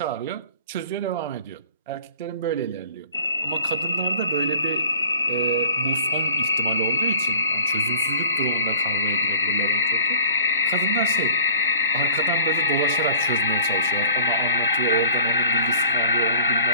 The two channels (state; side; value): inverted; both; correlation -0.48